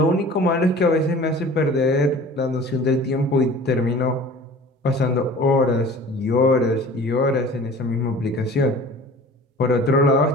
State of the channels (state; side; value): normal; both; correlation 0.44